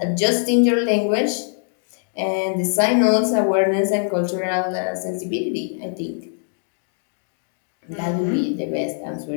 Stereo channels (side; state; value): right; silent; digital silence